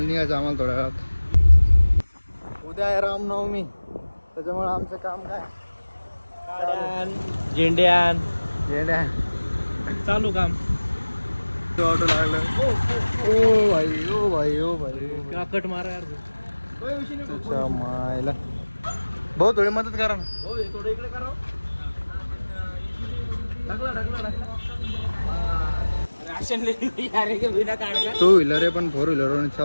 आम्हाला थोड्या वेळात. उद्या आहे रामनवमी, त्याच्यामुळे आमचं काम काय झेंड्यान येड्या चालू काम. ऑटो लागलं. ओ भाई ओ भाई ओ भाई काकट मारा यार. त्याच्या मायला भाऊ थोडी मदत करा ना. थोडं इकडे करा. टू व्हीलर आहे पण 4 व्हीलर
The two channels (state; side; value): inverted; both; correlation -1.00